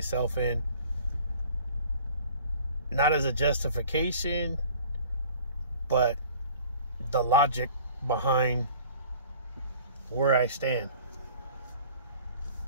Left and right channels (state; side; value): inverted; both; correlation -0.48